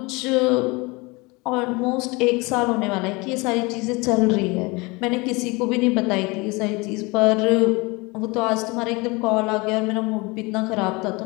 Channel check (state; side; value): quieter; right; 25.7 dB